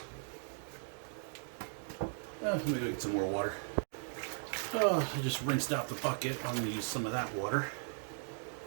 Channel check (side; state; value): left; silent; 53 dB below the other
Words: Let me go get some more water. Oh, I just rinsed out the bucket. I'm going to use some of that water.